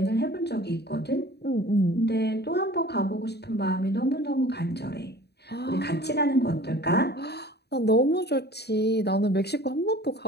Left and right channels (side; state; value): right; late; 0.48 ms